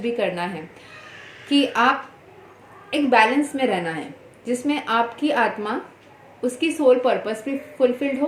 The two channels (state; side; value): identical; both; correlation 1.00